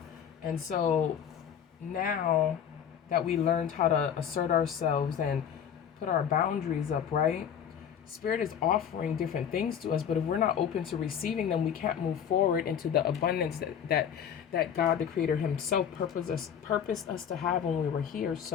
And so now that we learned how to assert ourselves and put our boundaries up, right? Spirit is offering different things to us, but if we're not open to receiving them, we can't move forward into the abundance that God, the Creator Himself, purposed us to have when we were here.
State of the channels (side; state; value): right; quieter; 8.5 dB